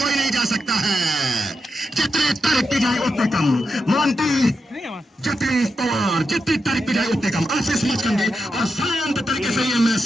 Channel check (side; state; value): both; normal; correlation 0.87